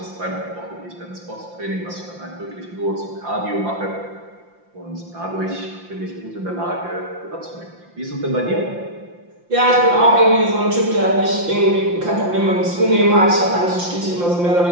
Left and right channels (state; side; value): late; left; 5.8 ms